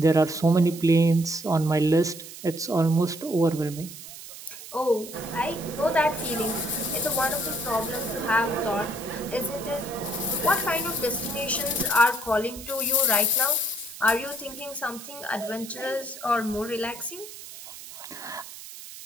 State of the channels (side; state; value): right; noise; hiss, 14 dB below the sound